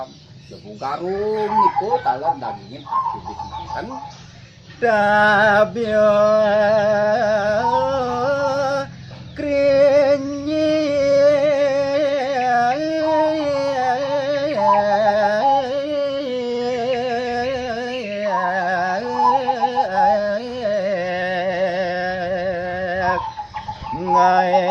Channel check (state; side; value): identical; both; correlation 1.00